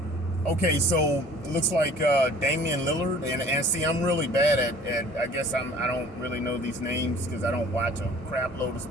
Okay, so it looks like Damian Lillard, and see, I'm really bad at I guess I don't really know these names because I don't watch a crap load of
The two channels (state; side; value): normal; both; correlation 0.49